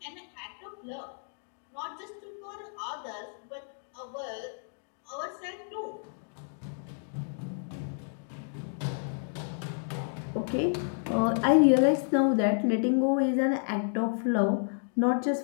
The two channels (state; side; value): silent; right; digital silence